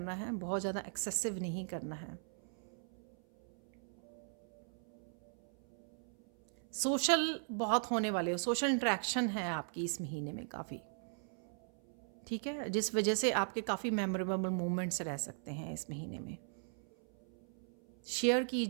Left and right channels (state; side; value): silent; left; 52 dB below the other